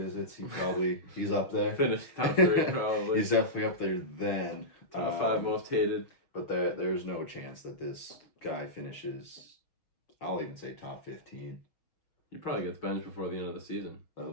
he's up there. Finished top 3 probably. He's definitely up there then. Top 5 most hated. But there's no chance that this guy finishes, I'll even say top 15. He probably gets benched before the end of the season. That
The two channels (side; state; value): right; late; 6.4 ms